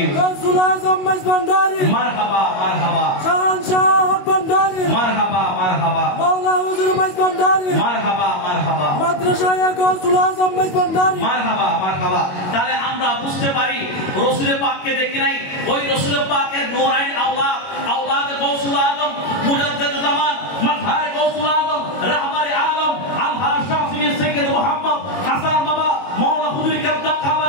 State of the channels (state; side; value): late; right; 22 ms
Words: গাউসুল আজম মেজবান্ডারি, মারহাবা মারহাবা, শাহনশাহ হক ভান্ডারি, মারহাবা মারহাবা, মাওলা হুজুর মেজবান্ডারি, মারহাবা মারহাবা, মাদ্রাসায়ে গাউসুল আজম মেজবান্ডারি, মারহাবা মারহাবা। তাহলে আমরা বুঝতে পারি রাসূল পাককে দেখি নাই, ওই রাসূল পাকের নূরাইন আওলাদ, আওলাদ গাউসুল আজম, মুজাদ্দিদুল জামান, মাযহার গাউসুল আজম, রাহবারে আলম, আলহাজ শাফিঈ সাইয়্যিদ মুহাম্মদ হাসান বাবা, মাওলা হুজুর কেবলা